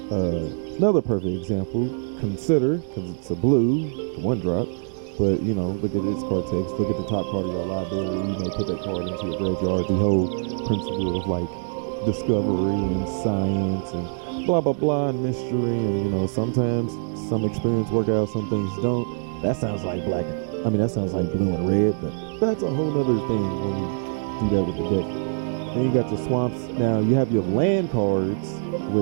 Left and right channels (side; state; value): left; silent; digital silence